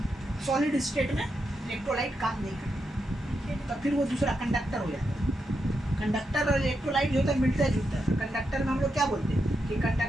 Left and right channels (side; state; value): both; normal; correlation 0.85